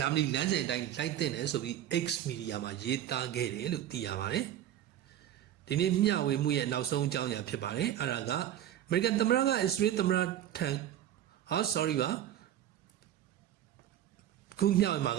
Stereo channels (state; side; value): quieter; left; 11.5 dB